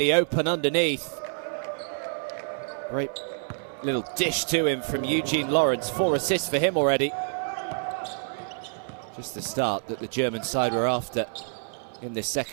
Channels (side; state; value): left; silent; 60 dB below the other